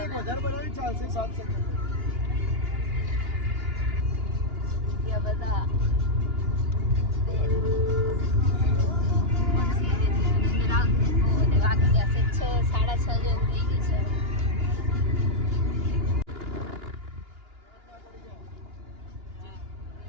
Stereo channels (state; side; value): late; left; 2.9 ms